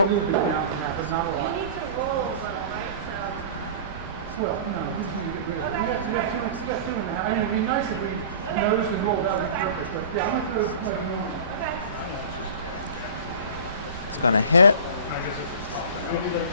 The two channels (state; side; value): inverted; both; correlation -0.36